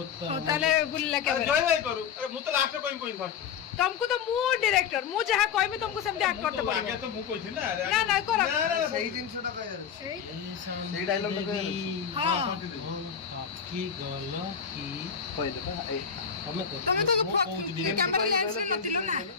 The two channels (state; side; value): quieter; right; 7.3 dB